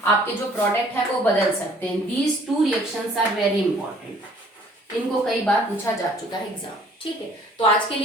आपके जो प्रोडक्ट है वो बदल सकते हैं। These 2 reactions are very important, इनको कई बार पूछा जा चुका है एग्जाम, ठीक है। तो आज के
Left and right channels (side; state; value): both; normal; correlation 0.56